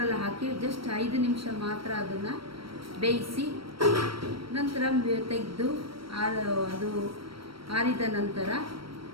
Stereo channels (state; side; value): late; left; 0.75 ms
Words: ಹಾಕಿ ಜಸ್ಟ್ 5 ನಿಮಿಷ ಮಾತ್ರ ಅದನ್ನು ಬೇಯಿಸಿ ನಂತರ ತೆಗೆದು ಅದು ಆರಿದ ನಂತರ